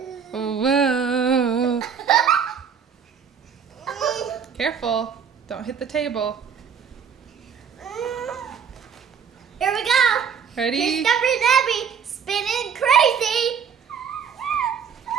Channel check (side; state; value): left; quieter; 7.1 dB